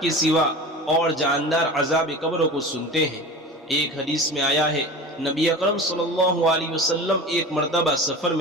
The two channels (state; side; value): normal; both; correlation 0.34